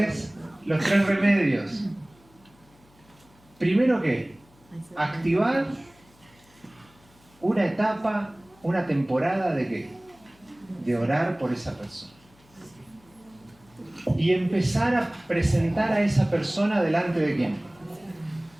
remedios. Primero ¿qué? Activar una etapa, una temporada de ¿qué? De orar por esa persona. Y empezar a presentar a esa persona delante de ¿quién?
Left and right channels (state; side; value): noise; left; hum, 29 dB below the sound